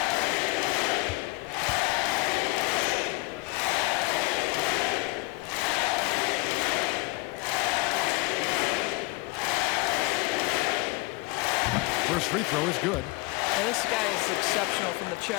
First free throw is good. And this guy is exceptional from the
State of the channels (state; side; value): quieter; right; 24.3 dB